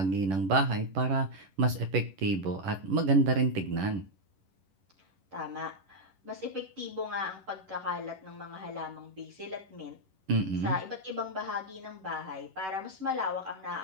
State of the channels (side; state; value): left; late; 11 ms